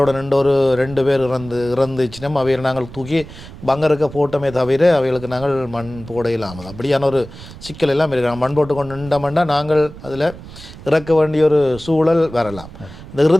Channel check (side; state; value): right; noise; rumble, 16 dB below the sound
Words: 2 பேர் இறந்துச்சுன்னா அவையை நாங்கள் தூக்கி பங்கருக்க போட்டோமே தவிர அவைகளுக்கு நாங்கள் மண் போட இல்லாமல் அப்படியான ஒரு சிக்கல் எல்லாம் இருக்கிறாங்க. மண் போட்டு கொண்டு நின்றோம்னா நாங்கள் அதில் இறக்க வேண்டிய ஒரு சூழல் வரலாம். இந்த